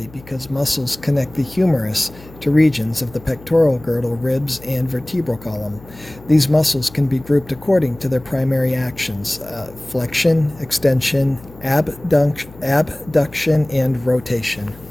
because muscles connect the humerus to regions of the pectoral girdle, ribs, and vertebral column. These muscles can be grouped according to their primary actions: flexion, extension, abduction, and rotation.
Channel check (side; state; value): left; noise; hum, 21 dB below the sound